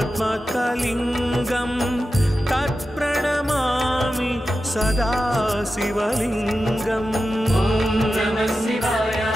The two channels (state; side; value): normal; both; correlation 0.92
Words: तत्प्रणमामि सदा शिवलिङ्गम्